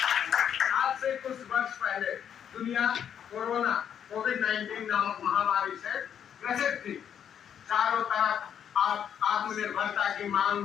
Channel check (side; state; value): right; quieter; 8.8 dB